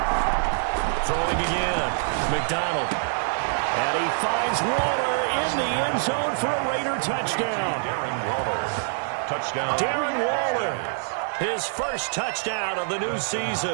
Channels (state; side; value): silent; left; digital silence